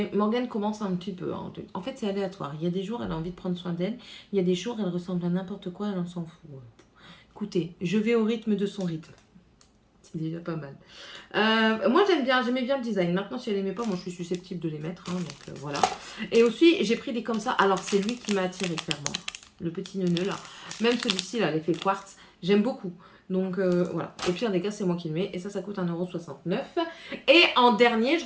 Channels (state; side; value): identical; both; correlation 1.00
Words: Morgane commence un petit peu. Hein. En fait c'est aléatoire. Il y a des jours elle a envie de prendre soin d'elle. Il y a des jours elle ressemble à n'importe quoi, elle en s'en fout. Écoutez, je vais au rythme de son rythme. C'est déjà pas mal. Moi j'aimais bien le design. Maintenant si elle aimait pas, moi je suis susceptible de les mettre. Hein, donc voilà. Et aussi j'ai pris des comme ça. Alors c'est lui qui m'a attiré clairement. Le petit neuneu là. Même celui-ci là, l'effet quartz. J'aime beaucoup. Donc voilà. Au pire des cas c'est moi qui le mets. Et ça coûte 1,69 €. Et en dernier, je